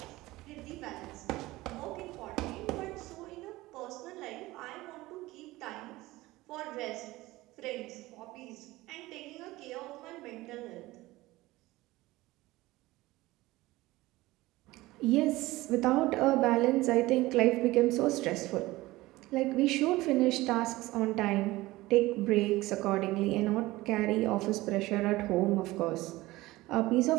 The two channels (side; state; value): left; quieter; 18.9 dB